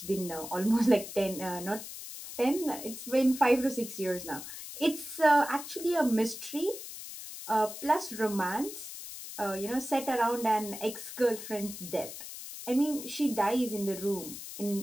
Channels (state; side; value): noise; left; hiss, 11 dB below the sound